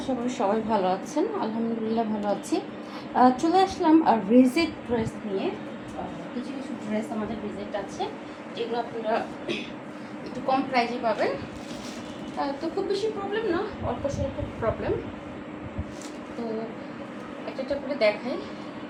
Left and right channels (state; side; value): identical; both; correlation 1.00